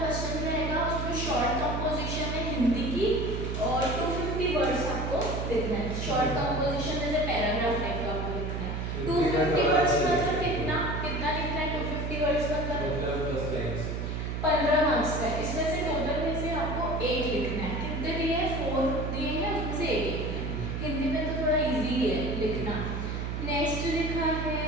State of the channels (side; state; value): right; noise; hum, 3 dB below the sound